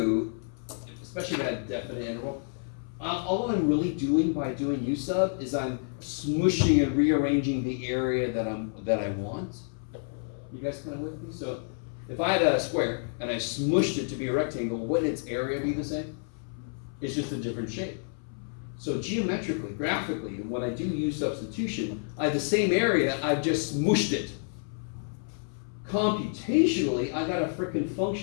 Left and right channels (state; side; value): silent; right; 58 dB below the other